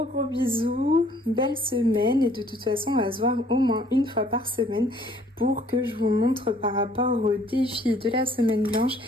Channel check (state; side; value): normal; both; correlation 0.60